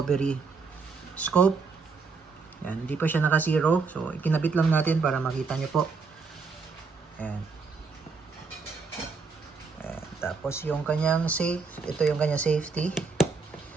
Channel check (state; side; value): quieter; left; 4.7 dB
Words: scope. Ayan. Hindi pa siya naka-zero. So ikinabit lang natin para makita nyo po. Ayan. Ayan. Tapos yung kanyang safe. Ito yung kanyang safety.